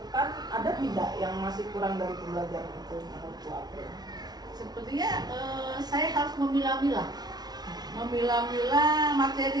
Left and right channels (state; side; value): late; left; 0.19 ms